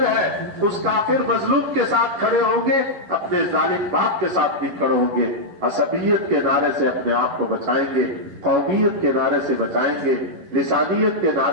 ہے، اس کافر مظلوم کے ساتھ کھڑے ہوں گے، اپنے ظالم باپ کے ساتھ بھی کھڑے ہوں گے، عصبیت کے نعرے سے اپنے آپ کو بچائیں گے، قومیت کے نعرے سے بچائیں گے، لسانیت کے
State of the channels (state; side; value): late; left; 11 ms